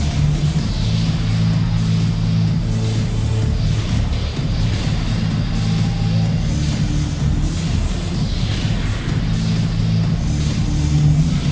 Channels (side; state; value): both; identical; correlation 1.00